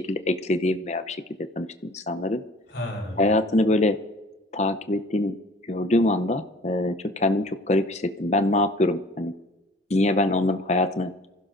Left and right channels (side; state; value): both; normal; correlation 0.48